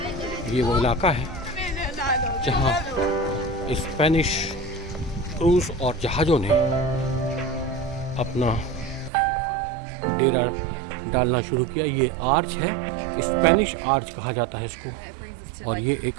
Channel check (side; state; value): left; drops out; at 9.1 s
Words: वो इलाका है जहाँ स्पेनिश क्रूज और जहाज़ों ने अपना डेरा डालना शुरू किया। ये आर्च है, स्पेनिश आर्च कहा जाता है इसको और ये एक